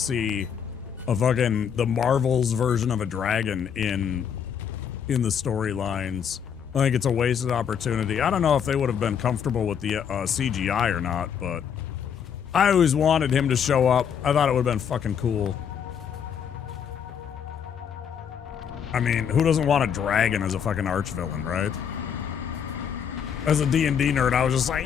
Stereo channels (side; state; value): right; quieter; 7.8 dB